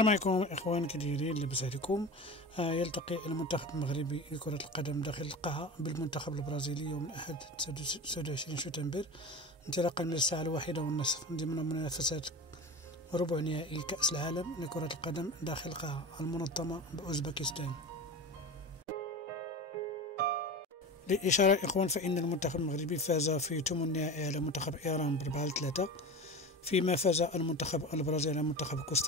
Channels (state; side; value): normal; both; correlation 0.30